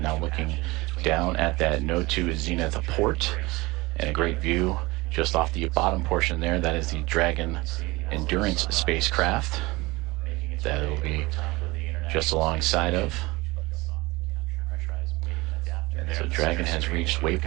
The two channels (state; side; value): quieter; left; 22.1 dB